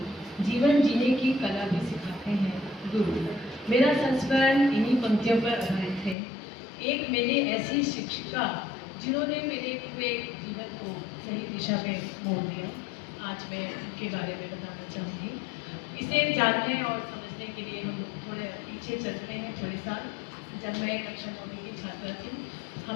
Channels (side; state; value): right; drops out; at 6.2 s